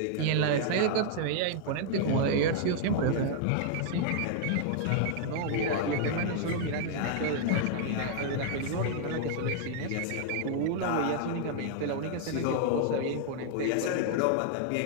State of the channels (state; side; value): different; both; correlation 0.00